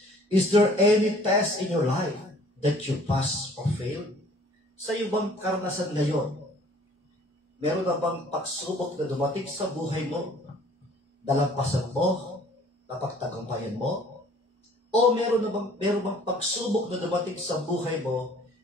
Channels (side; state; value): both; normal; correlation 0.54